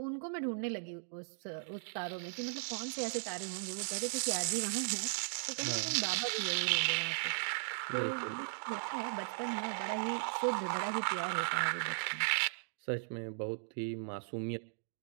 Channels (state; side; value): silent; left; digital silence